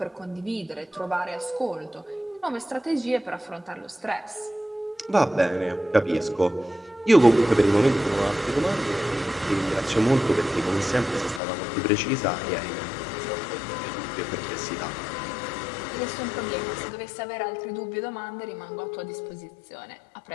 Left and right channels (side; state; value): right; drops out; at 11.4 s